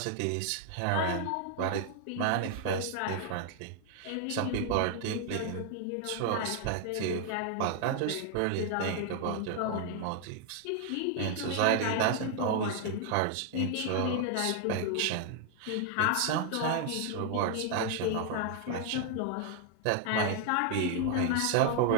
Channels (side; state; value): both; different; correlation 0.00